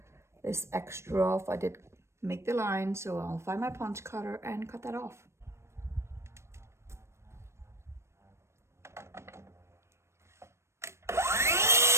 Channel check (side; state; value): left; late; 0.13 ms